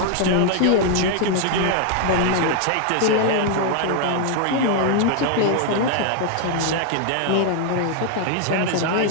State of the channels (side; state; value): both; different; correlation 0.00